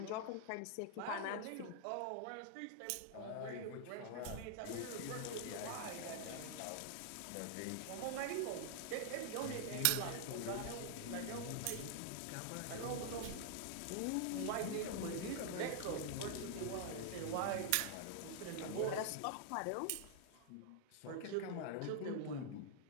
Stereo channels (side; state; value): both; different; correlation 0.00